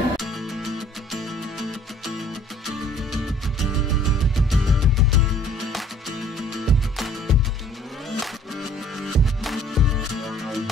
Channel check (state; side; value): normal; both; correlation 0.55